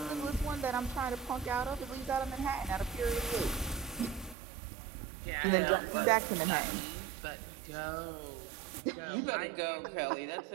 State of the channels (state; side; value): drops out; left; at 4.4 s